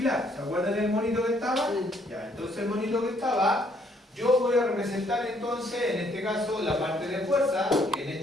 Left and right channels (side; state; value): both; normal; correlation 0.67